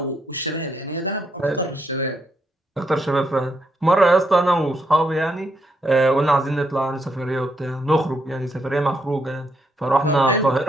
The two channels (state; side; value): normal; both; correlation 0.77